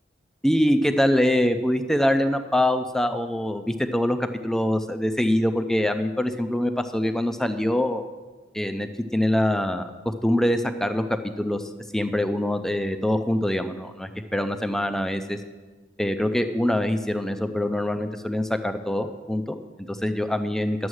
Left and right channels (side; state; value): both; normal; correlation 0.93